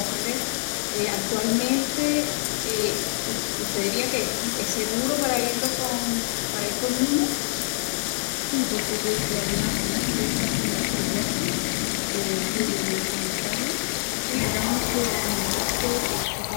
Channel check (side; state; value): right; silent; 61 dB below the other